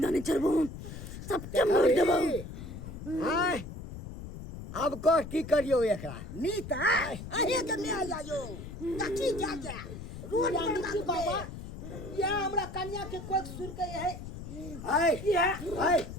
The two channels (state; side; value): noise; left; rumble, 11 dB below the sound